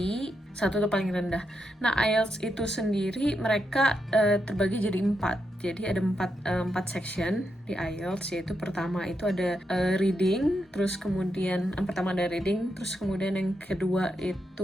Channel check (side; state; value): both; normal; correlation 0.84